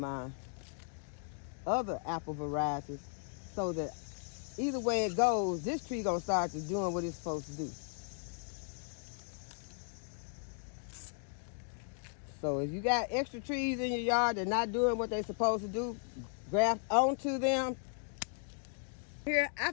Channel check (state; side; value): silent; right; 53 dB below the other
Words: other apple varieties, so that either way it goes, this tree gonna start to doing what it's supposed to do. So if you got extra trees in your yard that not doing what they're supposed to do, graft onto them. Here, I